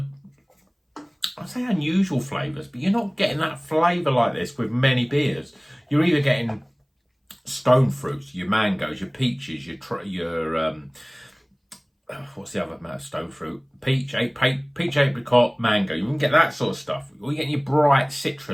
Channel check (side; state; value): both; identical; correlation 1.00